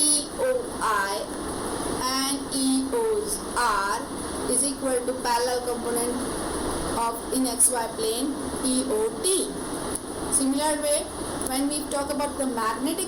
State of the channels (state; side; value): identical; both; correlation 1.00